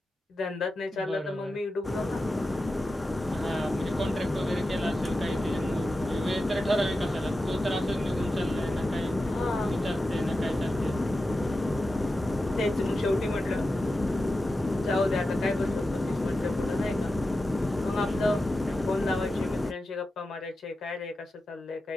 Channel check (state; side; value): normal; both; correlation 0.92